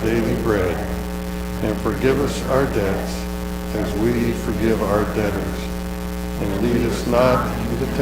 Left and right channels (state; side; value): identical; both; correlation 1.00